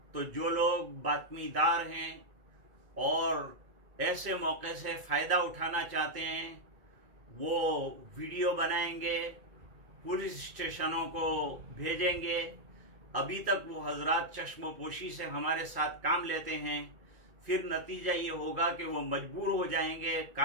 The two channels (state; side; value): late; left; 2.3 ms